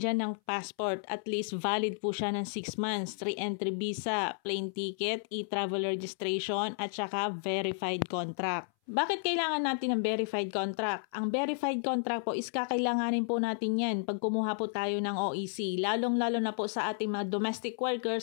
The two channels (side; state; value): right; silent; 56 dB below the other